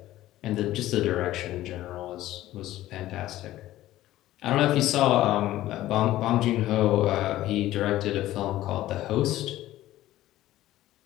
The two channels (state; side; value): quieter; right; 14.9 dB